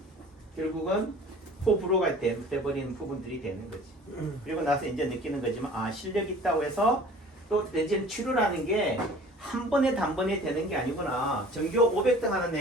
결국은 호불호가 돼버리는 부분들이 되는 거지. 그리고 나서 이제 느끼는 거지만 실력 있다고 해서 또 이제 치료라는 게 한 번에 단번에 되는 게 아니구나. 전교 500등 하는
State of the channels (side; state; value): both; normal; correlation 0.46